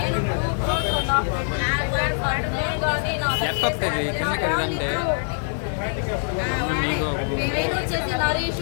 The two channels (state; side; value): silent; right; digital silence